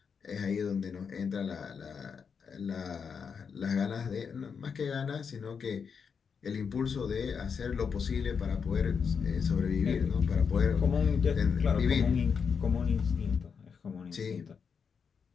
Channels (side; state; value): right; quieter; 6.3 dB